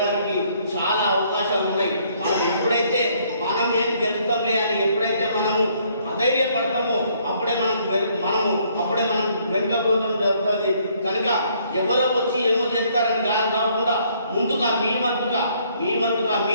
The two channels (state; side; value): inverted; both; correlation -0.66